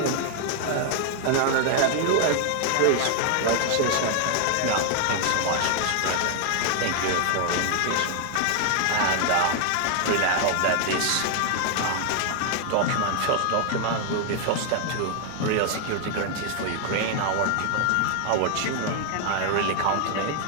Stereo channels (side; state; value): both; different; correlation 0.00